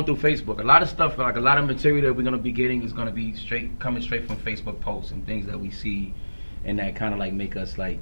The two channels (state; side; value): inverted; both; correlation -1.00